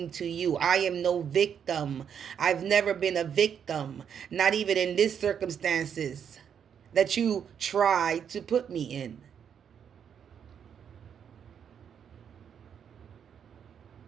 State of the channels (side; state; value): left; quieter; 8.0 dB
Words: to you. I am no victim. I've never been a victim. Not even in this circumstances. that you tried to put me in.